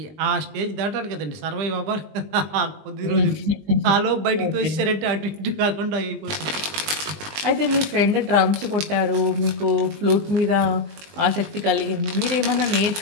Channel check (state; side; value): late; left; 20 ms